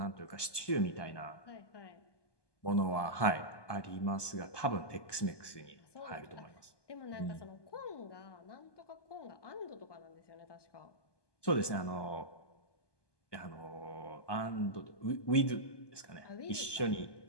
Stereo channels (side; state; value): right; late; 1.2 ms